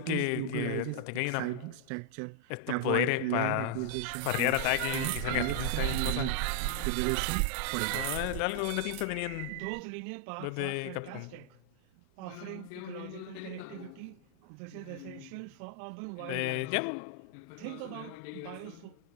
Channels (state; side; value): different; both; correlation 0.00